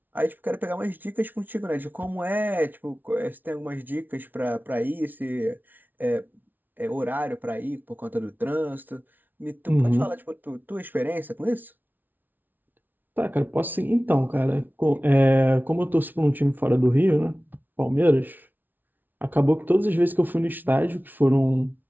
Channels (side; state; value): left; late; 0.086 ms